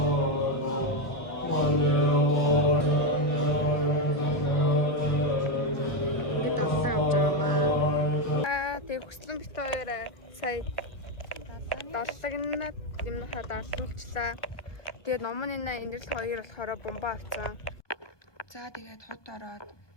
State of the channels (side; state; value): right; late; 1.4 ms